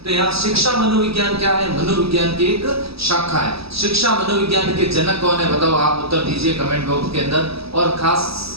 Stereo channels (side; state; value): left; late; 0.77 ms